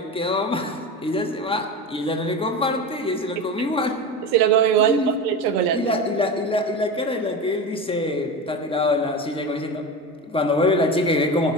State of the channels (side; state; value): both; normal; correlation 0.25